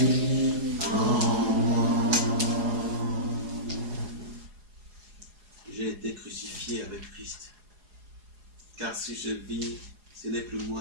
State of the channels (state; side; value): late; left; 4.8 ms